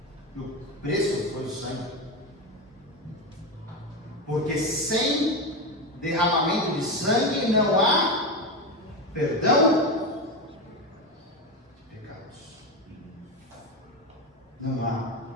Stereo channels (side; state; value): both; normal; correlation 0.16